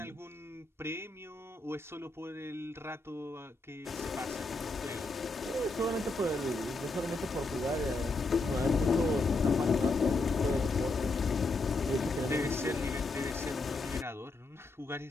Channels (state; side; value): quieter; right; 3.2 dB